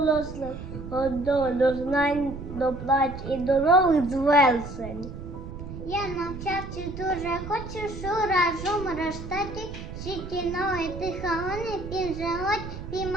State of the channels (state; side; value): noise; right; rumble, 10 dB below the sound